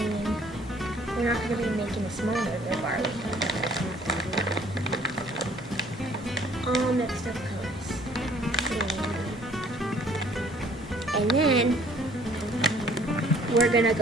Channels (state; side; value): normal; both; correlation 0.58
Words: we're not going to be making a small nerd rope, are we? All mixed up colors. And then we're going to